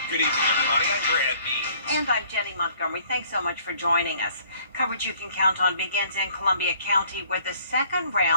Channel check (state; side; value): inverted; both; correlation -0.58